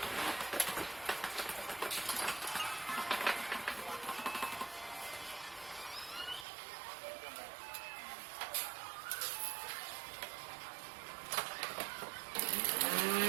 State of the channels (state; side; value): drops out; left; at 6.5 s